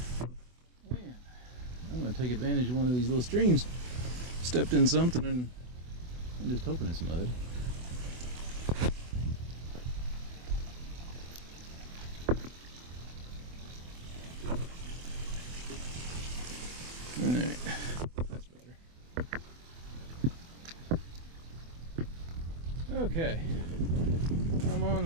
Man, I'm gonna take advantage of one of these little streams. Stepped in something and I'm just hoping it's mud. Alright, that's better. Okay, I'm on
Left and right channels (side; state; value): left; late; 24 ms